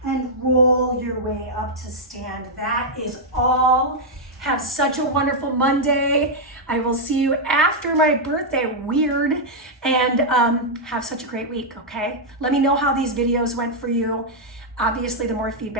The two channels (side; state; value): both; normal; correlation -0.03